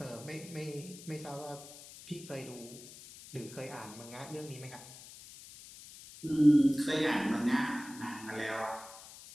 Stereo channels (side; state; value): left; noise; hiss, 16 dB below the sound